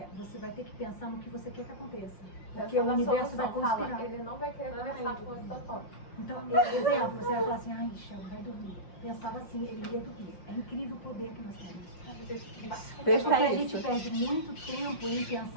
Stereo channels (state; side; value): late; right; 5.6 ms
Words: você vai ter que pensar no que você quer que aconteça. Porque o universo vai conspirar. Fala, ele não vai querer conversar com o Totó. Então, exemplo, você vai falar assim, ai, Shelby, vai dormir. Pensava assim, ele ia dormir. É incrível o poder que nós temos. É porque a gente perde muito tempo em